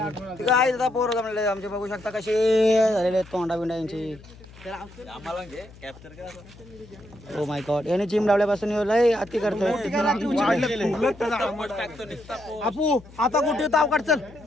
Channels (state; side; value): noise; left; hum, 21 dB below the sound